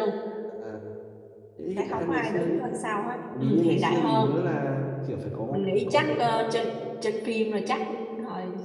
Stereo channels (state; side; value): identical; both; correlation 1.00